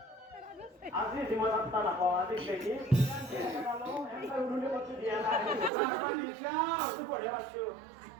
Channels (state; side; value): drops out; left; at 5.7 s